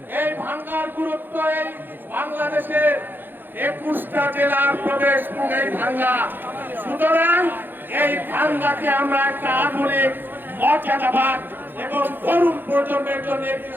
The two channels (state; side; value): late; left; 0.095 ms